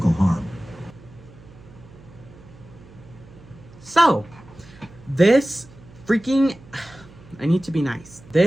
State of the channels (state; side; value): noise; right; hum, 22 dB below the sound